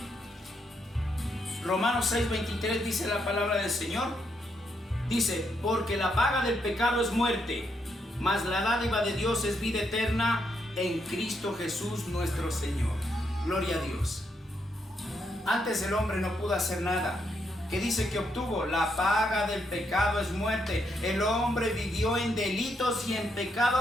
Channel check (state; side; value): normal; both; correlation 0.78